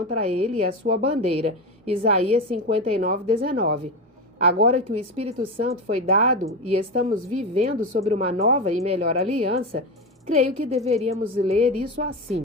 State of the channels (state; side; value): normal; both; correlation 0.18